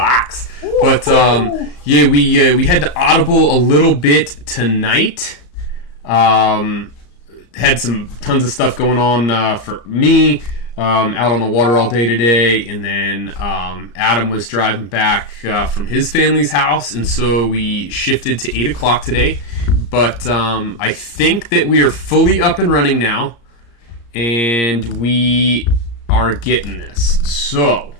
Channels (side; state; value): right; late; 34 ms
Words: But yeah, we had to audible a little bit tonight. Had some tons of stuff going on for me. Out on the water all day today, and then Adam was driving back from his family's house, and so we shifted to 8 o'clock today. But I think that we are fully up and running now, and we are getting this. So,